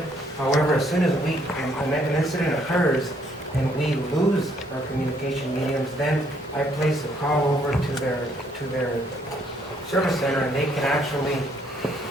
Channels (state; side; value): normal; both; correlation 0.68